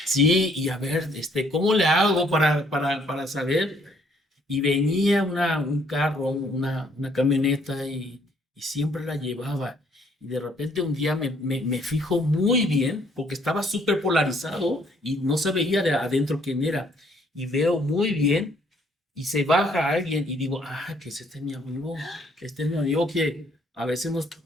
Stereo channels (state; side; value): normal; both; correlation 0.65